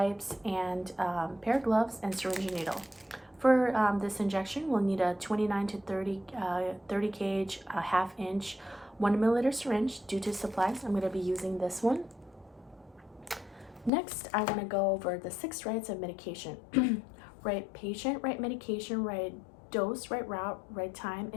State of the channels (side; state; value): right; drops out; at 13.9 s